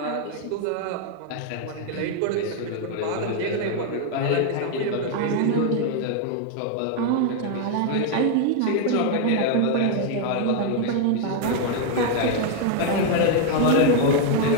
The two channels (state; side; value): different; both; correlation 0.00